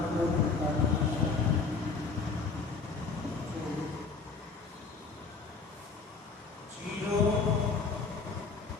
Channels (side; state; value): right; quieter; 4.6 dB